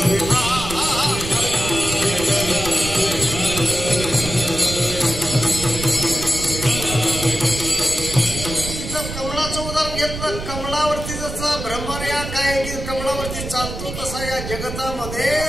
कमळावरती जसा भ्रमर या काय की कमळावरती चालतो तसा या जगतामध्ये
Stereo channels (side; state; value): right; noise; rumble, 7 dB below the sound